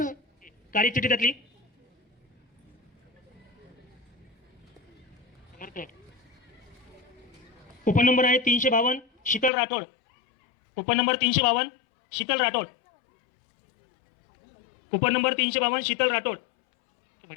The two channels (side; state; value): right; drops out; at 9.5 s